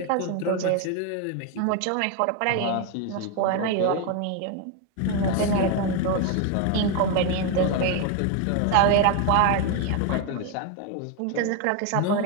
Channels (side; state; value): both; different; correlation 0.01